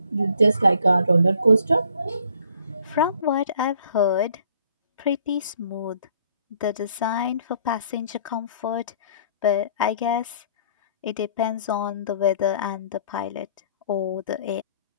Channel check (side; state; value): both; inverted; correlation -0.58